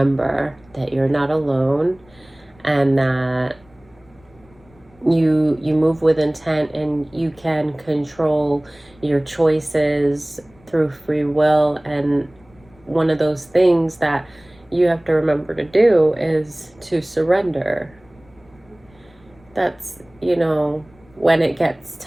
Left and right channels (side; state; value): left; noise; rumble, 29 dB below the sound